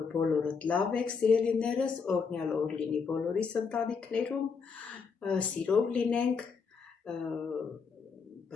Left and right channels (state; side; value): quieter; right; 5.5 dB